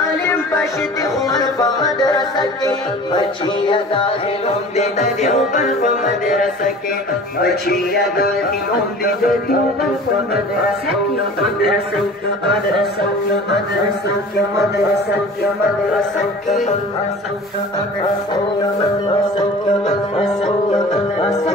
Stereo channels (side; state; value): both; normal; correlation 0.42